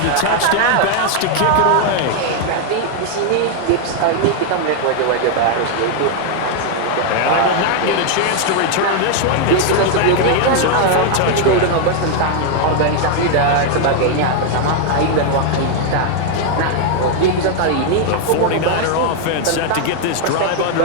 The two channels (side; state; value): both; different; correlation 0.00